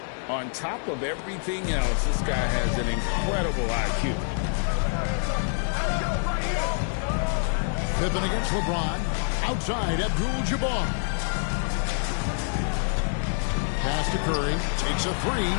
On top of everything else, this guy has an incredible IQ. Pippen against LeBron. Outside, Abdul-Jabbar. Pass to Curry. Takes a 3.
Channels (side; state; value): right; silent; 61 dB below the other